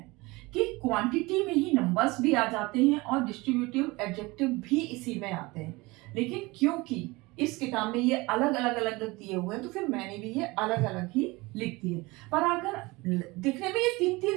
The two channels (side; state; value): left; quieter; 22.9 dB